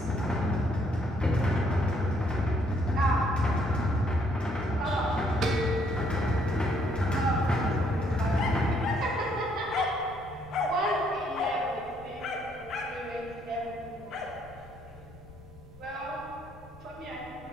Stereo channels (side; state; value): left; noise; rumble, 21 dB below the sound